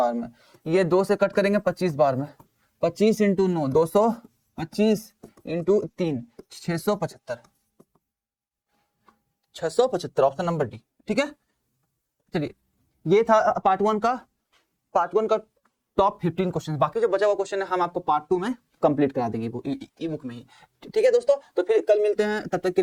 में, ये 2 से कट करेंगे 25 बार में, 25 into 9 225 into 3 675, 675 option number D. ठीक है, चलिए ये था पार्ट वन का टॉप 15 क्वेश्चन। बाकी जो बचा हुआ क्वेश्चन है हम आपको पार्ट 2 में कंप्लीट करा देंगे ई बुक में ही। ठीक है दोस्तों, तो फिर कल मिलते हैं, तब तक के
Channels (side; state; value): both; identical; correlation 1.00